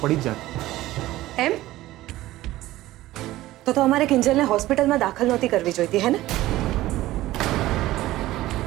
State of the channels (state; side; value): quieter; left; 16.3 dB